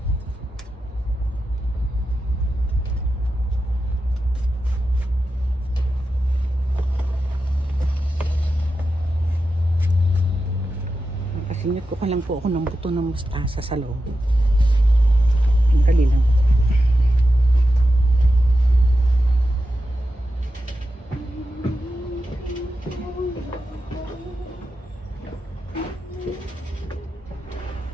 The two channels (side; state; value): both; normal; correlation 0.90